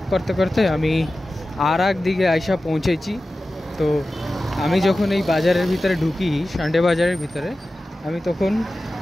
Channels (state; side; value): normal; both; correlation 0.95